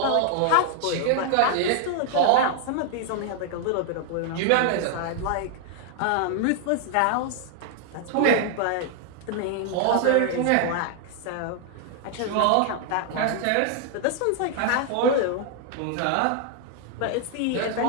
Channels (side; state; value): both; different; correlation 0.00